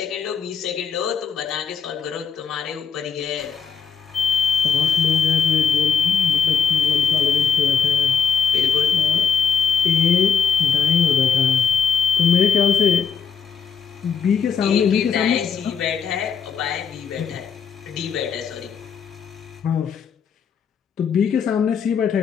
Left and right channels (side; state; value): right; quieter; 6.6 dB